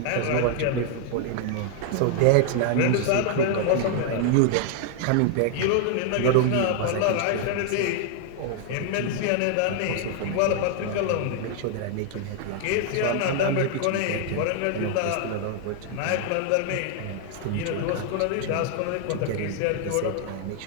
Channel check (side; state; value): both; different; correlation 0.00